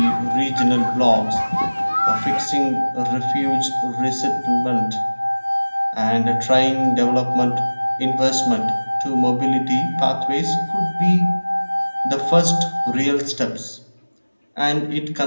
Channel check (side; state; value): both; inverted; correlation -1.00